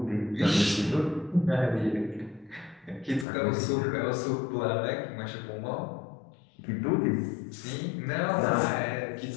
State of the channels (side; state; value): right; drops out; at 3.2 s